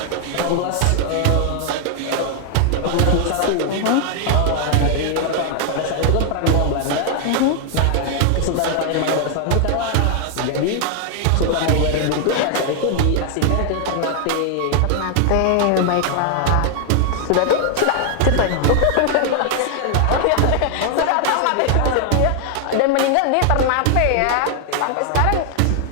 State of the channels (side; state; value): both; different; correlation 0.00